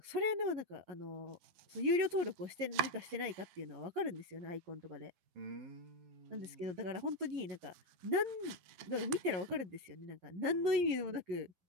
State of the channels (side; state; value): left; late; 11 ms